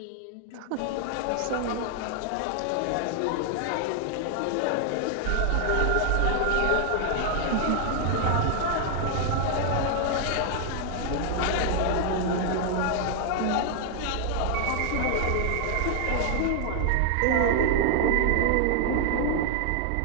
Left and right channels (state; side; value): different; both; correlation 0.00